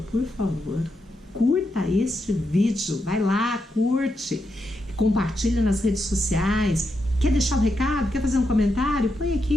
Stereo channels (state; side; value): normal; both; correlation 0.84